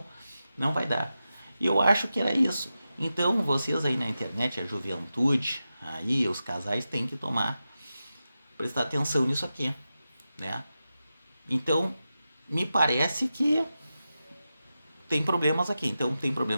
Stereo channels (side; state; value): both; inverted; correlation -0.92